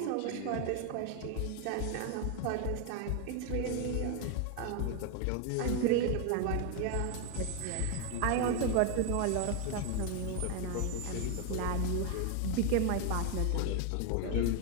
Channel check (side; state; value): both; different; correlation 0.01